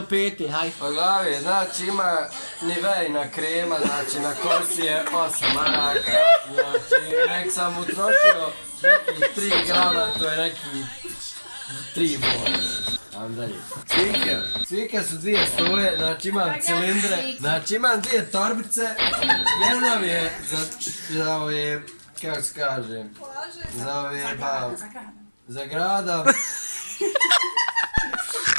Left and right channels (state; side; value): inverted; both; correlation -1.00